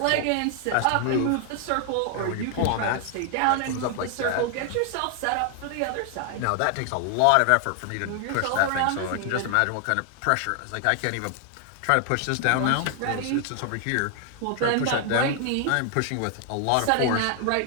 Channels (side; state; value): both; different; correlation 0.00